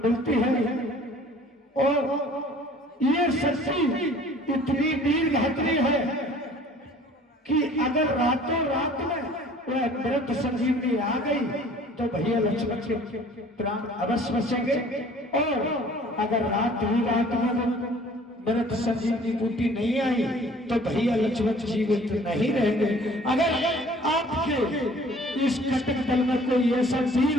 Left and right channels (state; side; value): normal; both; correlation 0.51